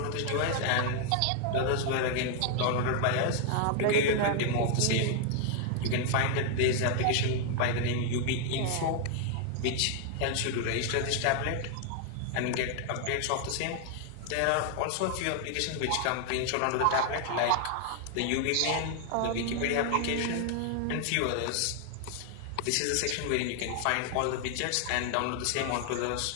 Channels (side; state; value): both; different; correlation 0.00